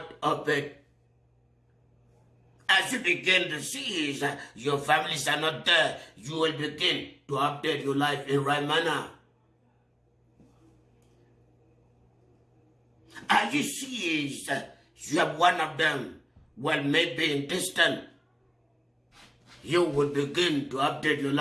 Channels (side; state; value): both; identical; correlation 1.00